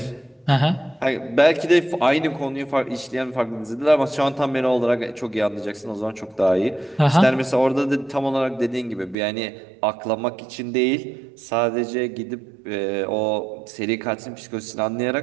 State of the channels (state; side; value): drops out; left; at 9.2 s